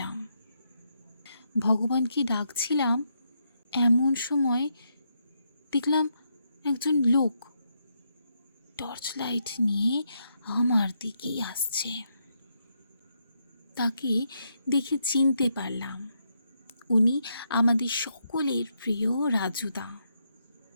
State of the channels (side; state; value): both; inverted; correlation -0.79